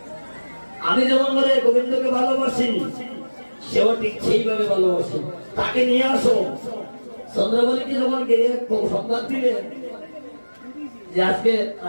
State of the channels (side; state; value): both; inverted; correlation -1.00